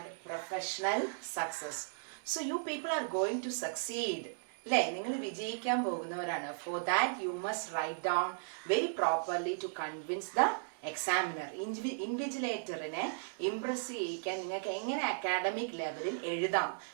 Professional Success. So you people are going to succeed. For that you must write down very properly to convince the examiner. ഇൻവിജിലേറ്ററിനെ impress ചെയ്യിക്കാൻ നിങ്ങൾക്ക് എങ്ങനെ academic ലെവലിൽ എഴുതാം,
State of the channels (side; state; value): left; silent; digital silence